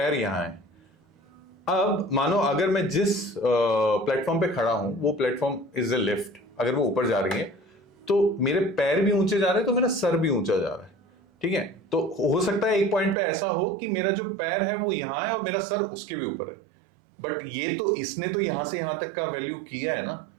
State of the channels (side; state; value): left; drops out; at 13.2 s